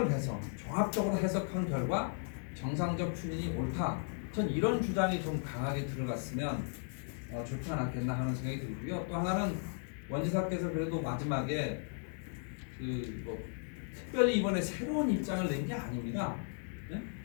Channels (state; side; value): silent; right; 54 dB below the other